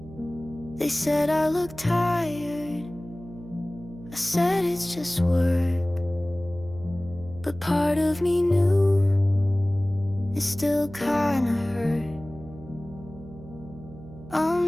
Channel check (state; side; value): noise; right; hum, 17 dB below the sound